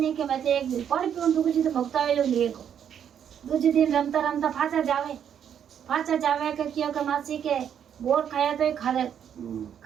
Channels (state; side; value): quieter; left; 8.8 dB